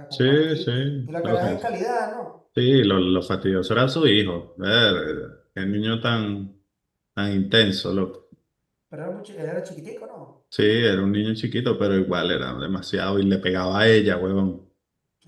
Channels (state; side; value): identical; both; correlation 1.00